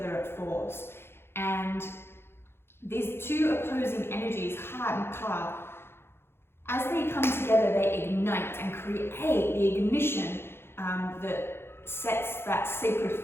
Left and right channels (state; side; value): late; right; 0.11 ms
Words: at force. And these two opposing energies, Ha and Ka, as they come together, they ignite and create the ignition that sets that sacred